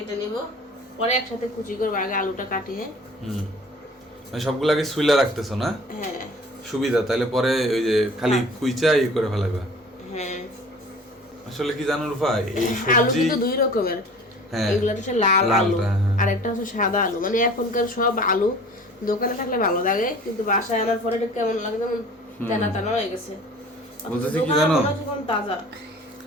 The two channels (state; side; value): normal; both; correlation 0.45